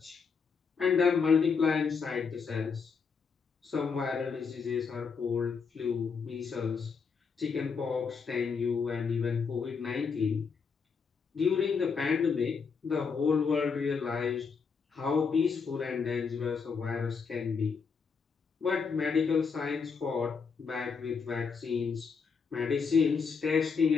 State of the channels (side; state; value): right; quieter; 5.6 dB